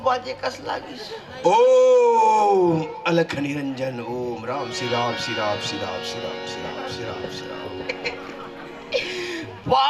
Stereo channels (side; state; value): both; identical; correlation 1.00